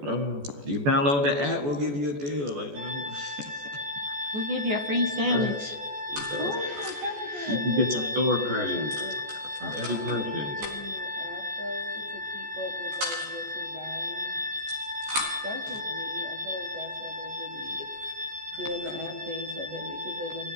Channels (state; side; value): late; left; 14 ms